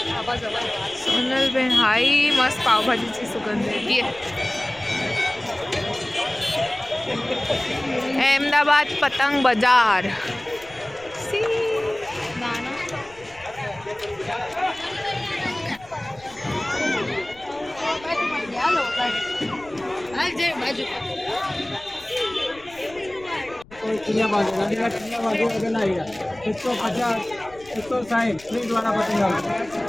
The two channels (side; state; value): left; noise; rumble, 24 dB below the sound